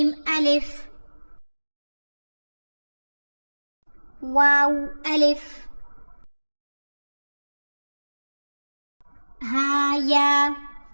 ألف واو ألف ها يا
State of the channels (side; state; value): both; inverted; correlation -1.00